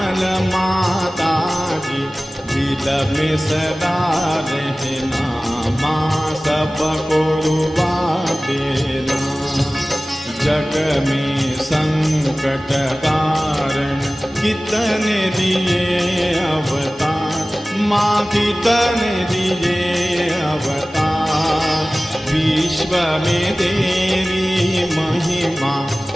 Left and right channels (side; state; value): both; normal; correlation 0.97